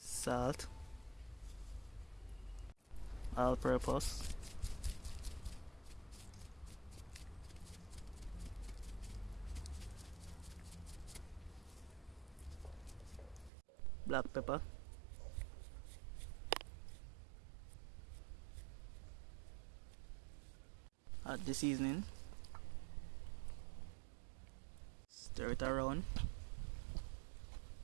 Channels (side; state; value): left; drops out; at 13.5 s